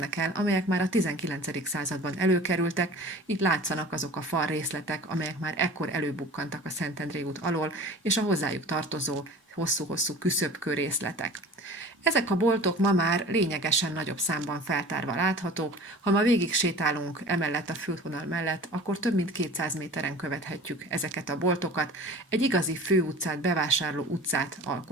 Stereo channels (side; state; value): both; normal; correlation 0.42